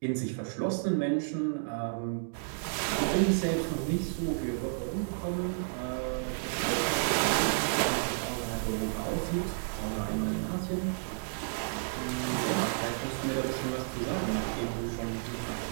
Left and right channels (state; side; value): silent; left; digital silence